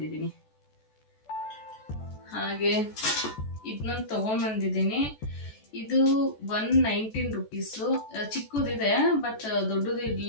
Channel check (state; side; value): late; right; 14 ms